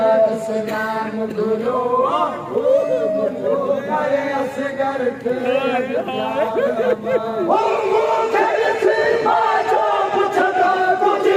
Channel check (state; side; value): identical; both; correlation 1.00